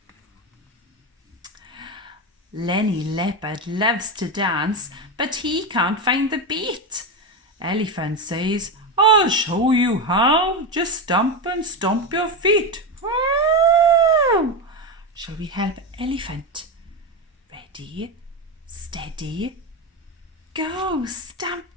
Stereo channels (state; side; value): normal; both; correlation 0.15